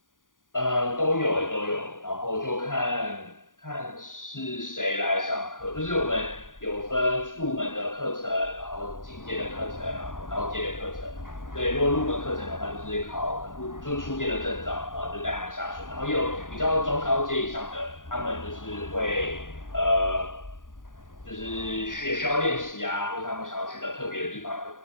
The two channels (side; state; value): right; late; 0.89 ms